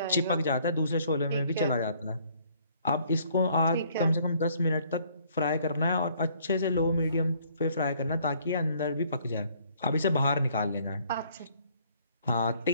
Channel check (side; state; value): both; inverted; correlation -0.62